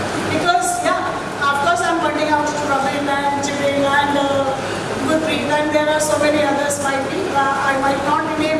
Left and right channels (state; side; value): identical; both; correlation 1.00